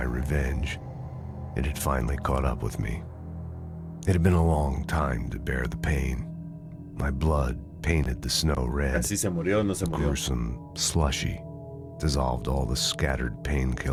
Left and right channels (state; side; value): identical; both; correlation 1.00